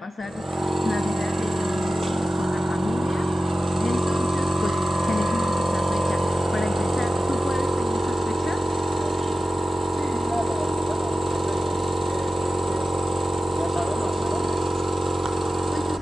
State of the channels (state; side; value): normal; both; correlation 0.94